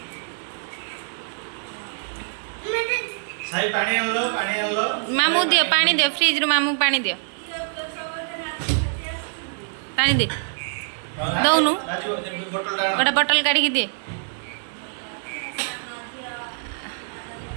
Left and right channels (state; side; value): silent; left; 62 dB below the other